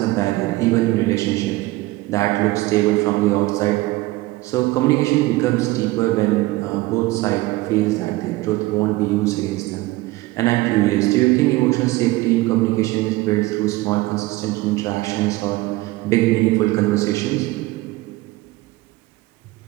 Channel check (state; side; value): quieter; left; 19.5 dB